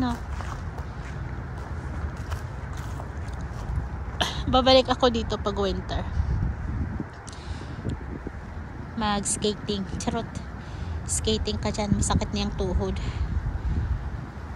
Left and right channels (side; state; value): both; identical; correlation 1.00